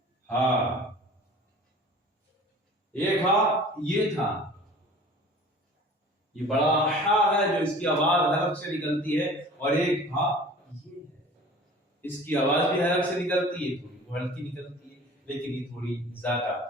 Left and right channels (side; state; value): both; normal; correlation 0.44